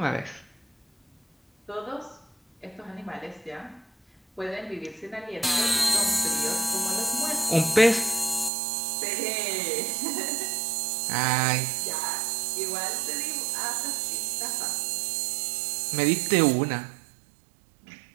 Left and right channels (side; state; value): left; drops out; at 8.5 s